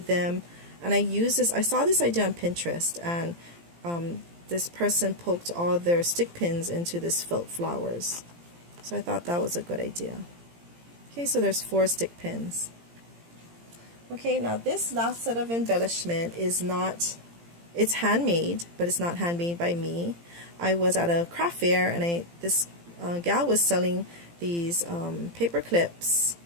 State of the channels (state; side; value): late; left; 17 ms